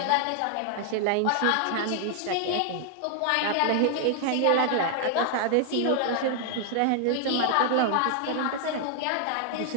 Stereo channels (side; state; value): both; different; correlation 0.00